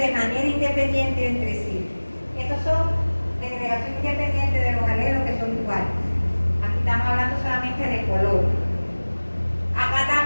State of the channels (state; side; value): inverted; both; correlation -1.00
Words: manera independiente entre sí. Estos son segregación independiente de los alelos que son iguales. Aquí estamos hablando solamente de color. Acá